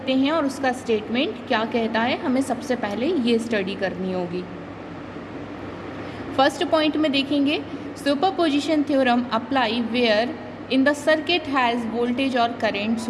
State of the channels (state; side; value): identical; both; correlation 1.00